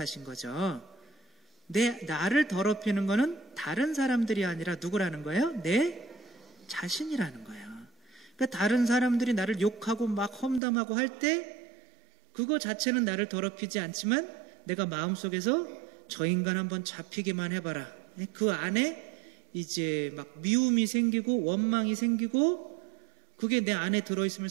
거죠. 나를 더럽히는 거는 다른 사람들이 아니라 누구라는 거예요? 내 자신이라는 거예요. 그러니까 다른 사람들이 나를 욕하고 막 험담하고 할 때 그거 자체는 나를 더럽히지 않지만 내가 마음속에서 저 인간 한번 잡히기만 해봐라. 그 안에 이제 막 미움이 생기고 원망이 생기고 그게 내 안에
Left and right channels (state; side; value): drops out; left; at 10.6 s